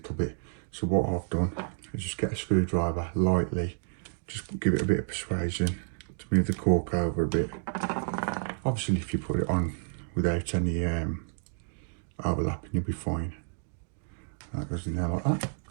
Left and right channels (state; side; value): silent; left; digital silence